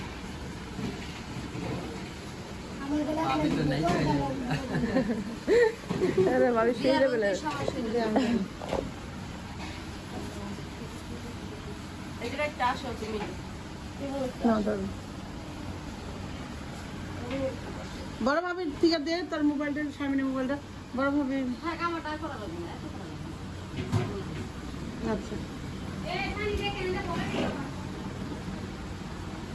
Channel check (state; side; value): identical; both; correlation 1.00